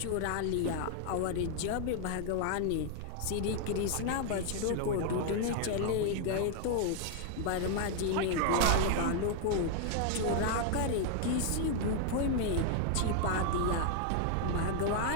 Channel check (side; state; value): both; different; correlation 0.00